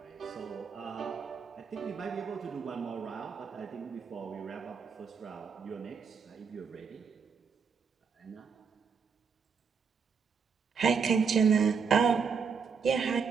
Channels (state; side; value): quieter; left; 5.9 dB